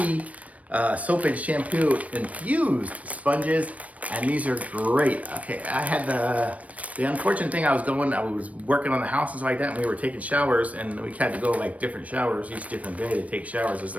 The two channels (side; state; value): left; late; 0.067 ms